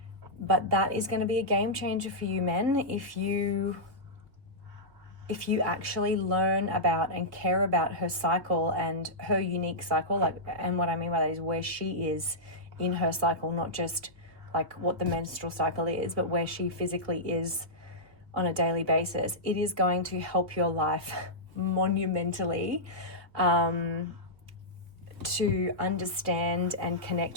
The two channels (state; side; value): late; left; 2.3 ms